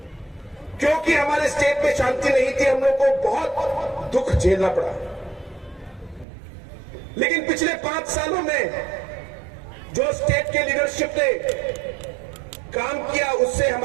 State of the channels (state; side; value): drops out; left; at 6.2 s